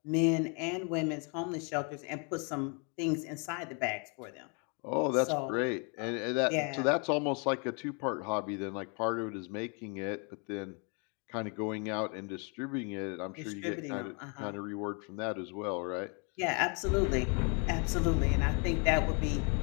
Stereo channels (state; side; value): quieter; right; 36.0 dB